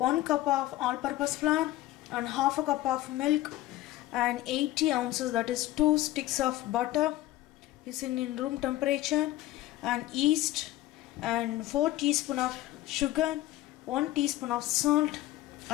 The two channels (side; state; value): right; quieter; 15.7 dB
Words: cup of all-purpose flour and half a cup of milk and 80 ounces, that is 2 sticks of butter is in room temperature, and yeast and 4 teaspoons of sugar, 1 teaspoon of salt